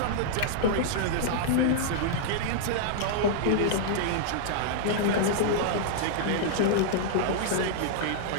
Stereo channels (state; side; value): different; both; correlation -0.01